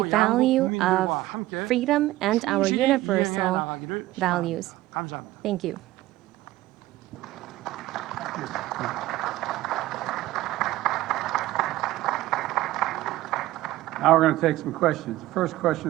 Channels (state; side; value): quieter; left; 16.4 dB